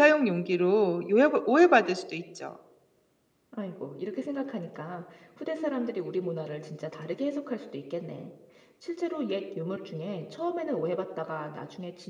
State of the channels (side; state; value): both; identical; correlation 1.00